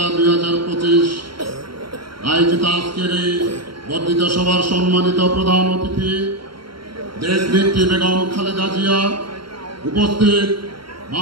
2025 আয়োজিত আজকের এই বর্ধিত সভার সম্মানিত প্রধান অতিথি দেশনেত্রী বেগম খালেদা জিয়া, উপস্থিত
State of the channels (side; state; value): left; late; 0.73 ms